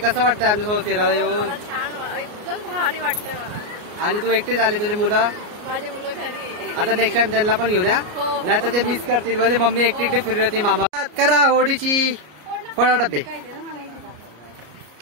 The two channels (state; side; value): late; left; 33 ms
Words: वाटतंय आमच्यासोबत फिरायला येऊन? छान, एकदम भारी वाटतंय मला. आणि तू एकटीच आली, तुझी मुलं? माझे मुलं घरी. आता नेक्स्ट टाइम त्यांना पण घेऊन या, नाही तर ते मिस करतील. म्हणजे मम्मी एकटी फिरली होती. मामा करा होळीची फळा डबे.